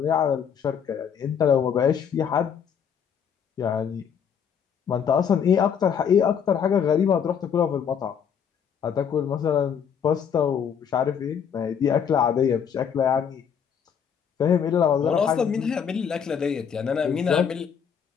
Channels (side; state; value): right; quieter; 7.6 dB